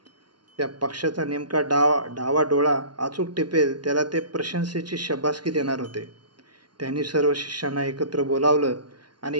त्या पक्षाचा नेमका डावा डोळा अचूक टिपेल त्याला ते प्रशंसेची शब्बासकी देणार होते. त्यांनी सर्व शिष्यांना एकत्र बोलावलं आणि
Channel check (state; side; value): late; left; 0.71 ms